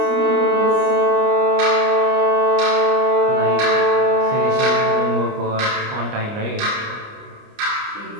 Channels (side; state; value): left; late; 29 ms